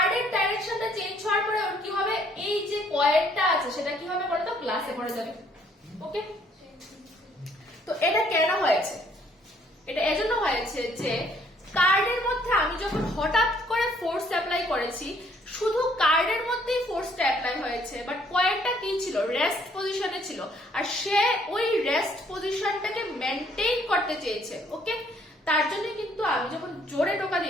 ডাইরেকশনটা চেঞ্জ হওয়ার পরে ওর কি হবে, এই যে কয়েনটা আছে সেটা কি হবে বলো তো, গ্লাসে পড়ে যাবে। ওকে, তো এটা কেন হয়েছে, এটা এজন্য হয়েছে যে কার্ডের মধ্যে আমি যখন হঠাৎ করে ফোর্স অ্যাপ্লাই করেছি, শুধু কার্ডের মধ্যেই ফোর্সটা অ্যাপ্লাই হয়েছে, বাট কয়েনটা কি ছিল, রেস্ট পজিশনে ছিল, আর সে ওই রেস্ট পজিশনটাকে মেনটেইন করতে চেয়েছে। ওকে, তার জন্য কিন্তু আমি যখন জোরে টোকা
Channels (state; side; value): normal; both; correlation 0.64